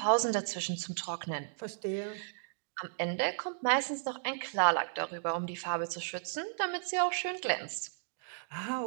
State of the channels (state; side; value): silent; left; digital silence